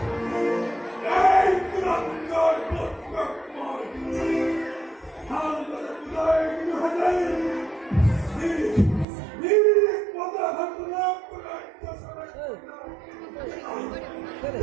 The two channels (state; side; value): drops out; left; at 9.1 s